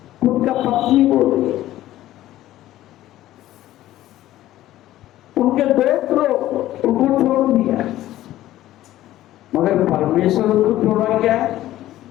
उनका पत्नी बोल रही, उनके दोस्त लोग उनको छोड़ दिया, मगर परमेश्वर को छोड़ा क्या?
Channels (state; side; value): quieter; right; 14.4 dB